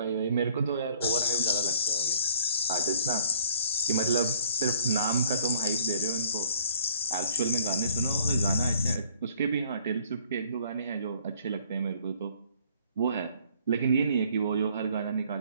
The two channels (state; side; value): inverted; both; correlation -0.57